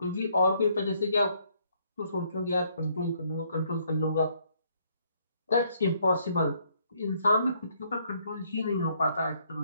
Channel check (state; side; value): inverted; both; correlation -0.68